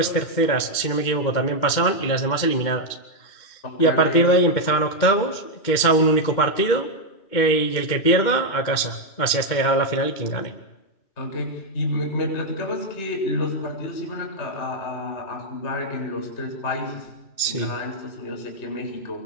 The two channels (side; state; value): right; late; 2.2 ms